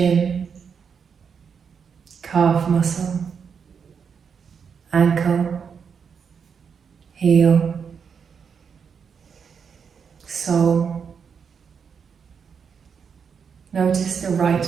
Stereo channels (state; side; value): quieter; left; 6.5 dB